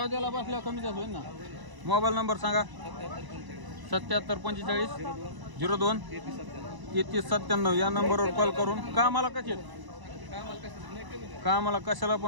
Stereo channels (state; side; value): late; left; 1.0 ms